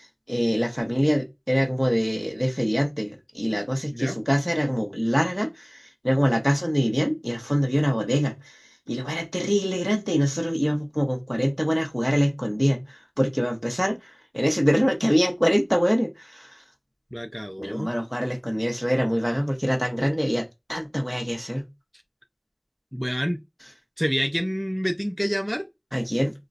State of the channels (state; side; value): identical; both; correlation 1.00